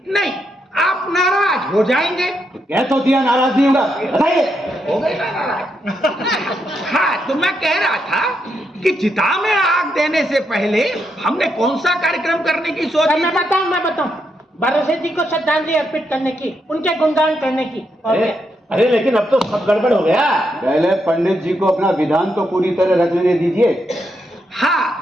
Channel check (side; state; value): both; normal; correlation 0.81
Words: नहीं, आप नाराज हो जाएंगे। तो कह तो दिया नाराज नहीं होगा, बताइए। हो गए ना नाराज। हाँ, तो मैं कह रहा था कि चिता में आग देने से पहले हमने कौन सा कार्यक्रम करने की सोच? मैं बताऊं भरोसे जी को श्रद्धांजलि अर्पित करने की, उनके गुणगान करने की। अरे लेकिन अब तो सब गड़बड़ हो गया। पहले पंडित जी को अपना विधान तो पूरी तरह रख लेने दीजिए।